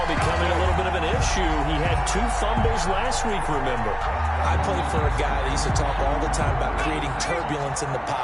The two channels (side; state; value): both; identical; correlation 1.00